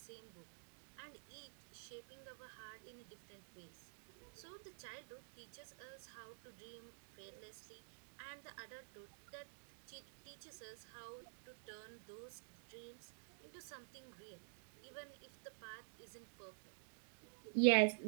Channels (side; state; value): left; silent; digital silence